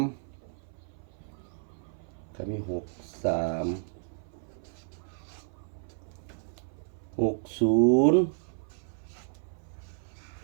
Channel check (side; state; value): left; silent; 56 dB below the other